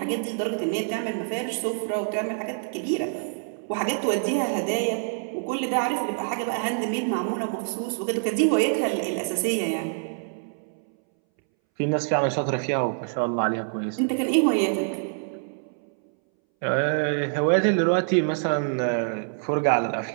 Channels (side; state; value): left; silent; 61 dB below the other